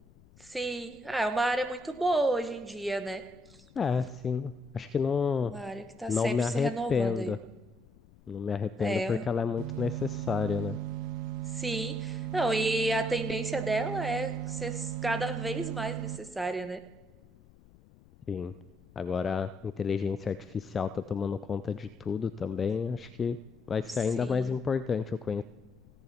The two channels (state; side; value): noise; left; rumble, 26 dB below the sound